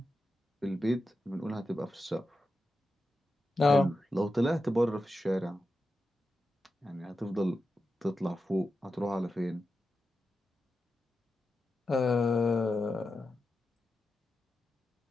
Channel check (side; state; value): both; normal; correlation 0.90